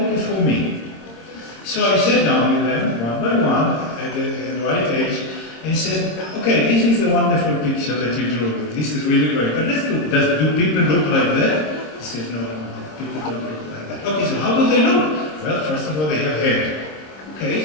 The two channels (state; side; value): late; right; 26 ms